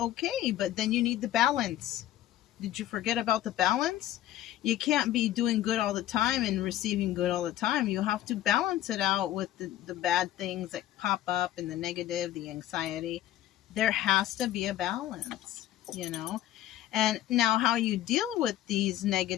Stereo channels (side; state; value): right; quieter; 13.1 dB